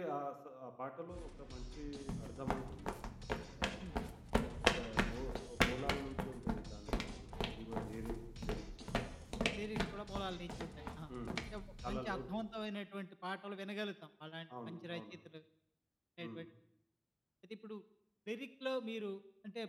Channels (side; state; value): both; identical; correlation 1.00